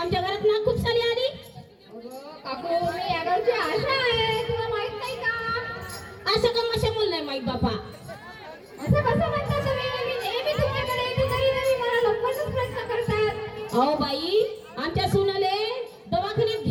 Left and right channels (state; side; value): identical; both; correlation 1.00